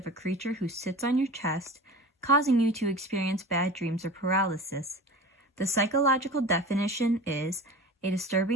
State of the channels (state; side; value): normal; both; correlation 0.36